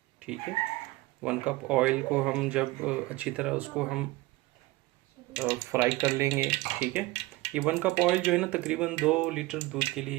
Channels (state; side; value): quieter; left; 20.2 dB